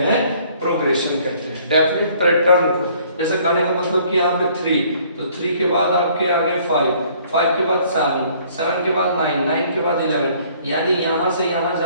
प्रोग्रेशन कहते हैं। डेफिनेट पैटर्न को, जैसे कहने का मतलब कि यहाँ पे 3, तो 3 के बाद आपके आगे 5, 5 के बाद 7, 7 के बाद 9, 9 के बाद 11, यानी यहाँ से यहाँ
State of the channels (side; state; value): both; inverted; correlation -0.59